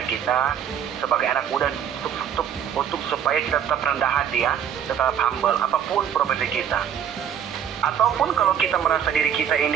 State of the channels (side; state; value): left; quieter; 8.9 dB